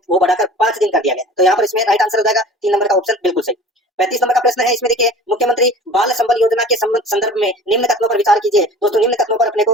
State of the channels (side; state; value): both; normal; correlation 0.42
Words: वो बढ़ाकर 5 दिन कर दिया गया। तो यहाँ पर इसमें राइट आंसर हो जाएगा 3 नंबर का ऑप्शन बिल्कुल सही। 35 नंबर का प्रश्न है, इसमें देखिए मुख्यमंत्री बाल संबल योजना के संदर्भ में निम्न कथनों पर विचार कीजिए। दोस्तों निम्न कथनों पर अपने